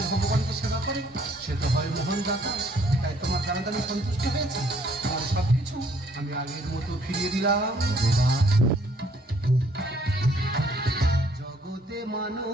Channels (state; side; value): normal; both; correlation 0.63